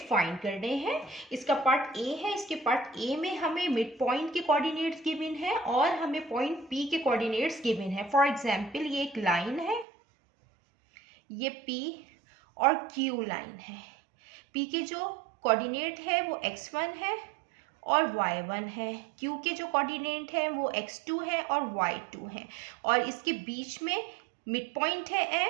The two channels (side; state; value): left; drops out; at 9.9 s